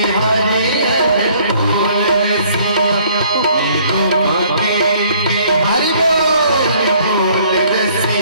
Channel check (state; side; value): inverted; both; correlation -0.59